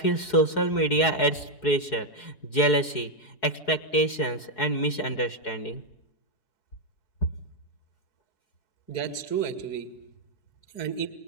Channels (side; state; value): right; late; 4.7 ms